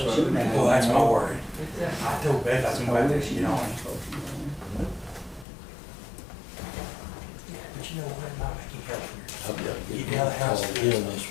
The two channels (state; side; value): drops out; right; at 5.5 s